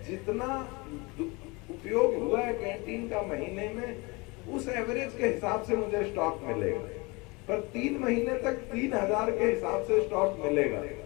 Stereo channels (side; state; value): right; quieter; 26.3 dB